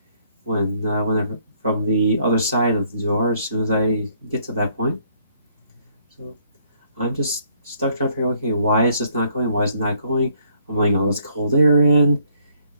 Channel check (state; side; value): inverted; both; correlation -0.66